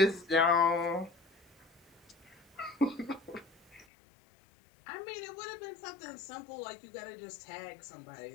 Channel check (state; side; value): drops out; right; at 3.9 s